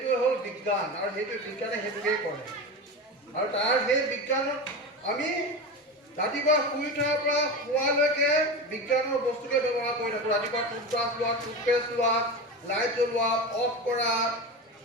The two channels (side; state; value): both; normal; correlation 0.24